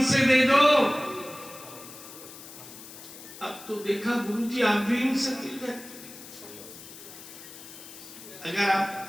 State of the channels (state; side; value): noise; left; hiss, 15 dB below the sound